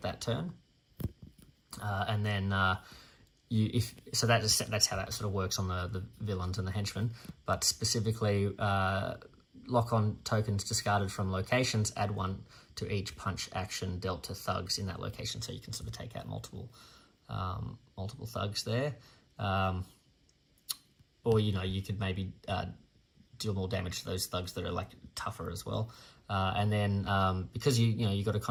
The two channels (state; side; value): identical; both; correlation 1.00